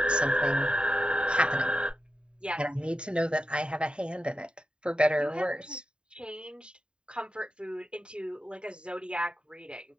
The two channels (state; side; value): late; left; 0.051 ms